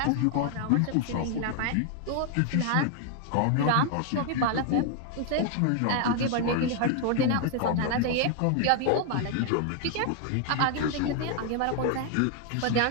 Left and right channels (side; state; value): both; different; correlation 0.00